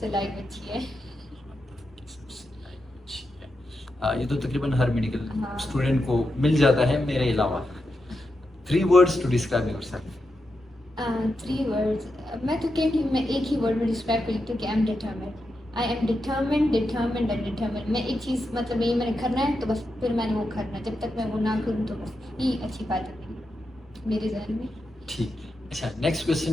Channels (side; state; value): both; normal; correlation 0.87